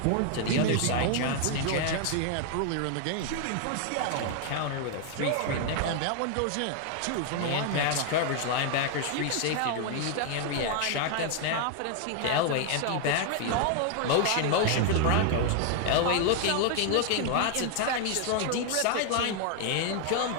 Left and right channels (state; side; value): different; both; correlation 0.00